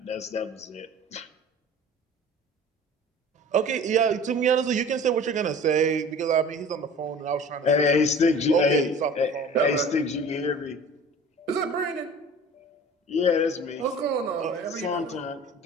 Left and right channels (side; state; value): both; normal; correlation 0.43